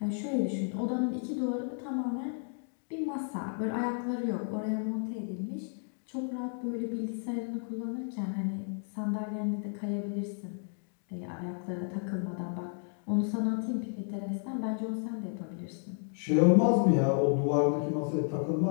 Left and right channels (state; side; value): silent; right; 56 dB below the other